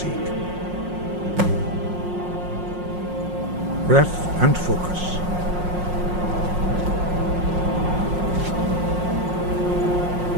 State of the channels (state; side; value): late; left; 5.5 ms